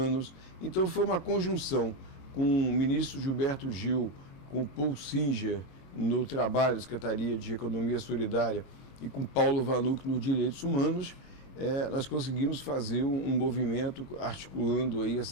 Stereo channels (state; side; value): late; right; 22 ms